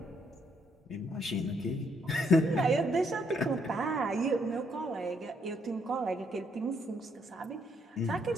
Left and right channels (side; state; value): both; normal; correlation 0.72